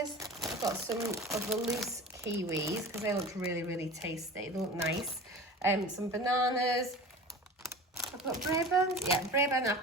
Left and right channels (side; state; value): both; normal; correlation 0.36